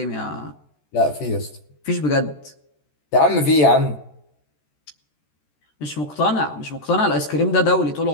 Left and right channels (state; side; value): late; right; 14 ms